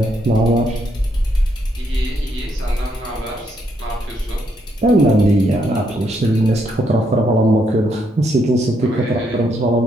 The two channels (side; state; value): both; normal; correlation 0.75